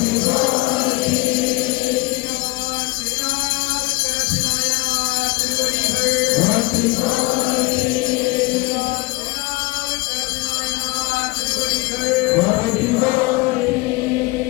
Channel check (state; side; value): quieter; right; 22.9 dB